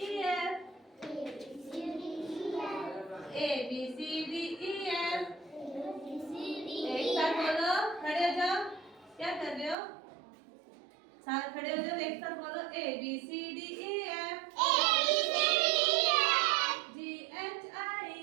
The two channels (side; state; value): left; drops out; at 9.8 s